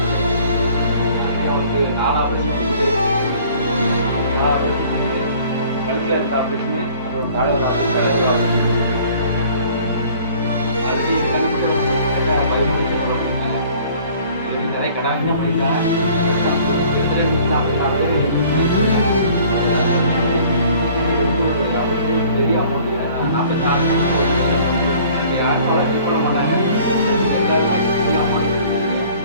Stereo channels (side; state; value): both; inverted; correlation -0.53